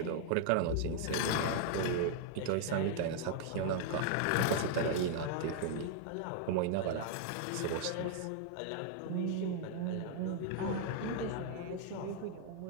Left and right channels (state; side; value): different; both; correlation 0.00